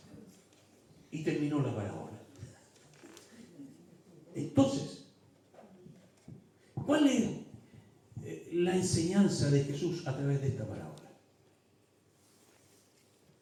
Y terminó la parábola. Entonces, ¿cuál es la enseñanza de Jesús a través de esta parábola?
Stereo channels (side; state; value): both; identical; correlation 1.00